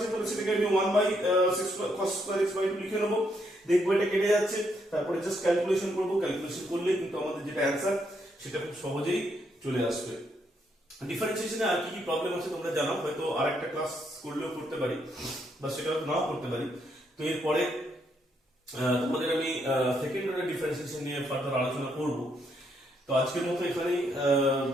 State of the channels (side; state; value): both; normal; correlation 0.75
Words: তাহলে সেটাকে আমি 1 by cos square x by 2 লিখে নেবো। দেখবো এটা কেটে যাচ্ছে, তারপরে জাস্ট ক্যালকুলেশন করবো, ক্যালকুলেশন করলে কিন্তু আমাদের যেটা অ্যানসার সেটা খুব সহজেই চলে আসবে। ডিফারেন্সিয়েশনে আর কি কি প্রবলেম আছে তোমরা জানাও, হয়তো আরেকটা ক্লাস করলেও করতে পারি বা সেটা হয়তো নাও করতে পারি। তো এরপরে তোমাদের আমি সেকেন্ড অর্ডার ডিফারেন্সিয়েশন নিয়ে ফার্দার আলোচনা করব। তো আজকের মতো এখানেই